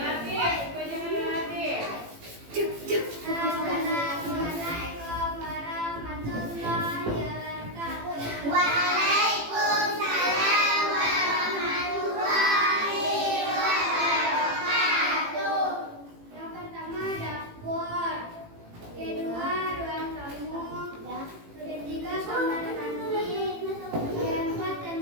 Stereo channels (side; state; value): left; late; 18 ms